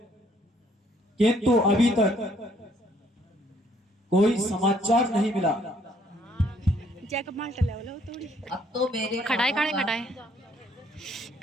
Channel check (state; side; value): normal; both; correlation 0.65